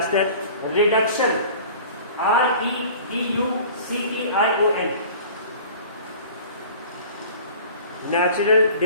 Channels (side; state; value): both; inverted; correlation -0.43